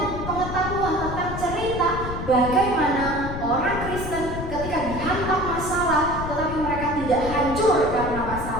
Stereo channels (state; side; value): noise; left; rumble, 7 dB below the sound